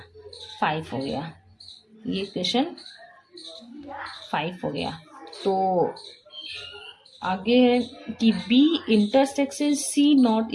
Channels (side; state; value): both; identical; correlation 1.00